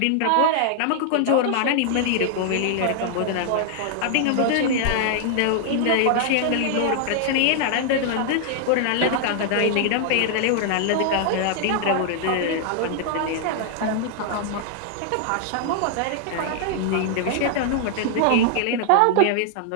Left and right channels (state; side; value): different; both; correlation -0.01